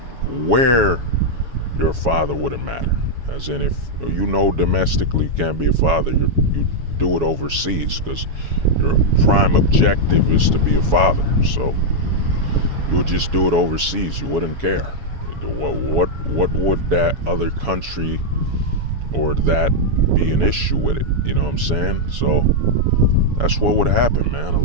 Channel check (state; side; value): late; left; 7.2 ms